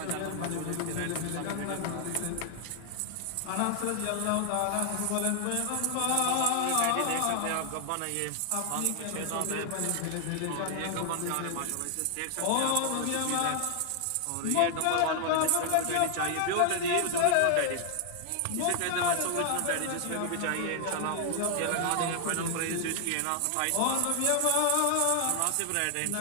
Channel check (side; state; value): both; different; correlation 0.00